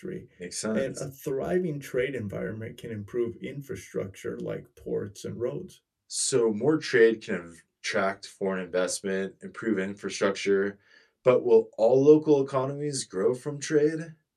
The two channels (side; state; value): both; identical; correlation 1.00